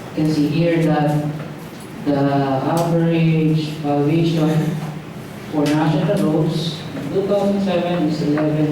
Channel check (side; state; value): both; identical; correlation 1.00